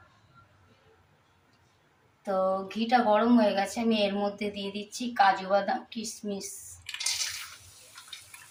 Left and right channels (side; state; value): both; identical; correlation 1.00